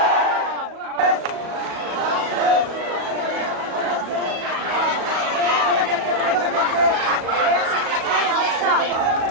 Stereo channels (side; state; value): left; late; 37 ms